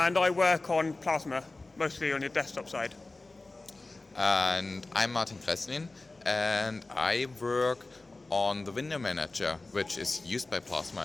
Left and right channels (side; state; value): right; quieter; 3.2 dB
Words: I work on Plasma, mostly on the desktop side. And I'm Martin Gräßlin, and I work on the window manager, which is used by Plasma